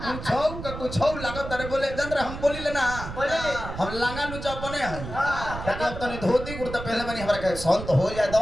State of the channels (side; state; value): right; noise; rumble, 9 dB below the sound